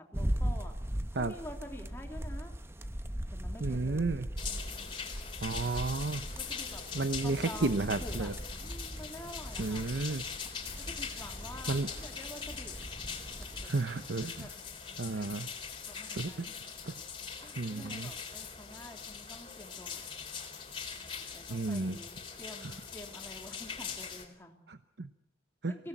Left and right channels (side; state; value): both; normal; correlation 0.56